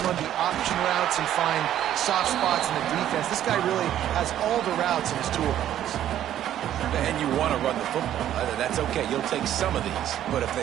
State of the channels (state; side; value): quieter; left; 11.5 dB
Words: run the option routes and find soft spots in the defense. This guy really has all the routes in his toolbox. And you want to run the football. That's okay. You'll take some of these. But if they